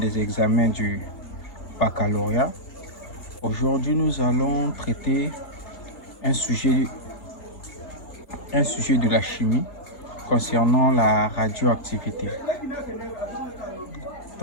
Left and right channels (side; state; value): right; late; 3.3 ms